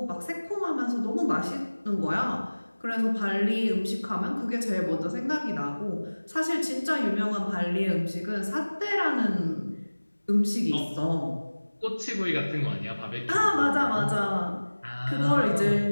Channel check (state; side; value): inverted; both; correlation -1.00